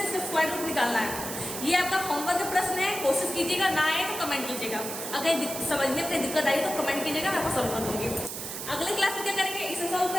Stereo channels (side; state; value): right; noise; hiss, 7 dB below the sound